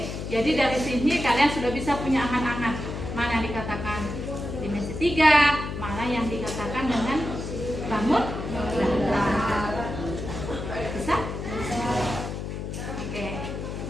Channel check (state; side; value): noise; left; hum, 6 dB below the sound